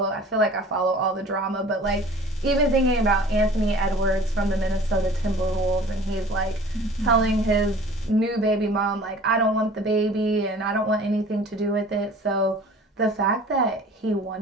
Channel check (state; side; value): normal; both; correlation 0.46